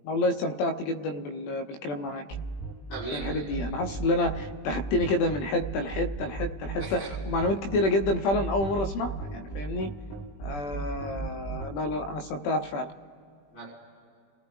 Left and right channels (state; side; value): late; right; 20 ms